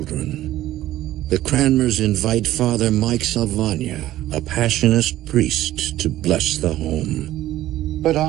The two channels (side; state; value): left; quieter; 14.4 dB